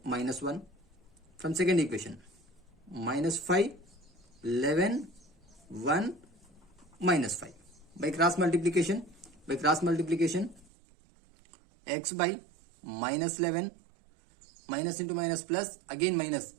-1. From second equation, -5, 11, 1, -5. By cross multiplication, x by -11, minus into minus plus, again minus,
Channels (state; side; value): drops out; left; at 10.7 s